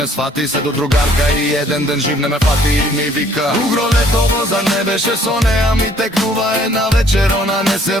свати. Се до другарка и еден ден жив не ме фати и ми вика: угро летово, зар не беше со неа? Ми текнува една вечер, она не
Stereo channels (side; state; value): both; normal; correlation 0.60